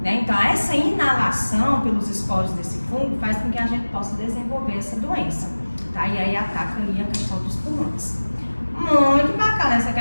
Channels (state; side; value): inverted; both; correlation -1.00